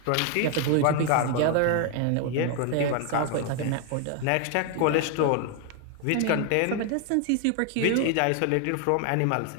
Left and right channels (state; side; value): different; both; correlation 0.00